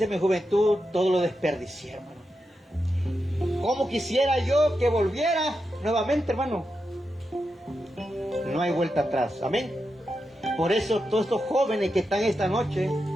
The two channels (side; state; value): both; normal; correlation 0.88